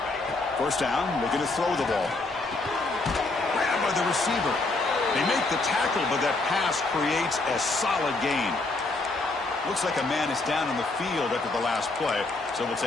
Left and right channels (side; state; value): right; quieter; 3.3 dB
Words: First down, looking to throw the ball. Grabbed by the receiver. They make the tackle, but that pass creates a solid gain. Looks like a man is down on the field after the last play, so we'll